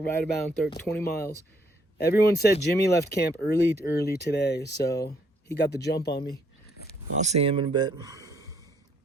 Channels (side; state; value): both; normal; correlation 0.68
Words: about 20 miles. Everyone said Jimmy left camp early today, so he got the jump on me. I'll see him in a bit.